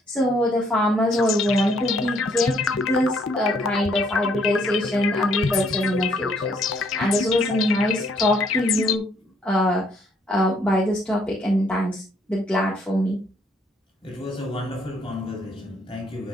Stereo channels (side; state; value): both; normal; correlation 0.67